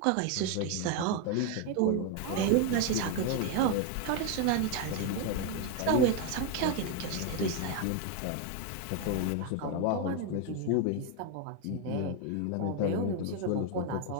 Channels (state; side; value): different; both; correlation 0.01